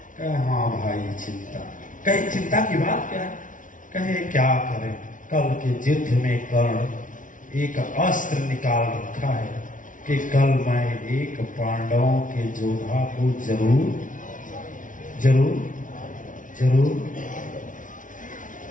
कहे हाँ भाई चिंता। कहे चिंता की बात क्या है? कहे क्या करें, कल के युद्ध में कर्ण एक अस्त्र निकाल रखा है कि कल मैं एक पांडवों के योद्धा को जरूर जरूर जरूर।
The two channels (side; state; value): right; late; 0.38 ms